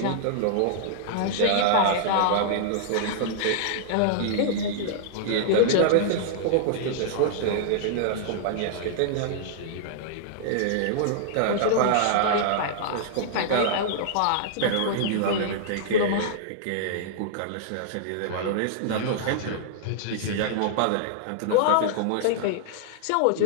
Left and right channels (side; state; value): both; different; correlation -0.01